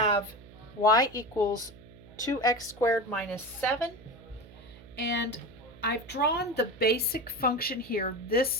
y equals 2x squared minus 7. And I've drawn the basic function here.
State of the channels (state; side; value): noise; right; hum, 20 dB below the sound